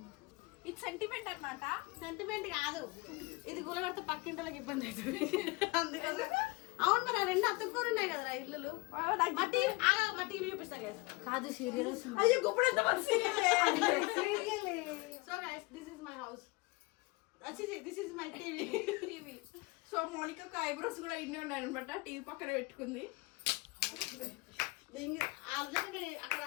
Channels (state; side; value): quieter; right; 24.9 dB